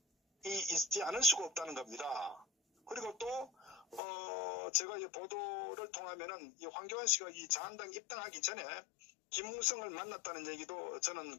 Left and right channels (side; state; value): right; drops out; at 4.0 s